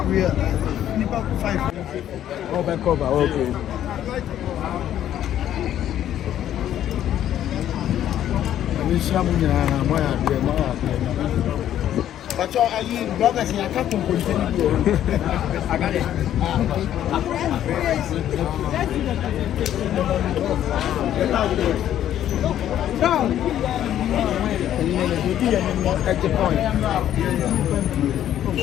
we are 5. Cover, okay. But are you brothers in a couple continue? I got it. At the point.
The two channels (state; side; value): quieter; right; 11.3 dB